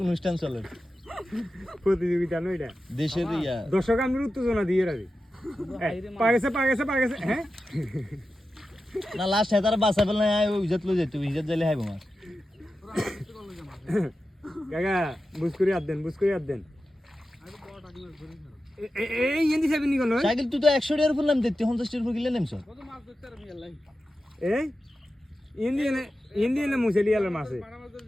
অনুষ্ঠান চলে প্রতিযোগিতা নয় এটা দেশের ইয়া দর্শক আমি উত্তেজনা দিয়ে রাখি পাগেছে হ্যাঁ না লাস্ট হেতার বাসা ফেল না ওই ইজ্জত লই যেতে ইজ্জত যাইলে হাইবো মাছ কাকা বুঝ করে হাত দেন এই এন্দি সাহেব নি কোন সাইকেল তুই তো 100 টাকার ফুল নাম দিতে 50 টাকার ফুল কিলে নেমছ কত মাছ ধরতে আর মিয়াল লাই এই এন্দি মুছেলি আলার মাছে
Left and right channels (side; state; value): both; normal; correlation 0.92